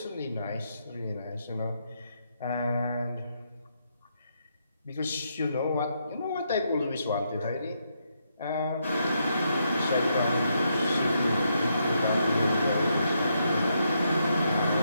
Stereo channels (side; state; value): both; inverted; correlation -0.79